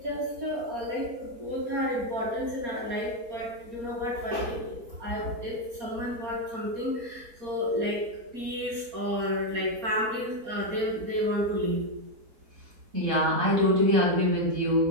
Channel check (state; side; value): late; left; 4.3 ms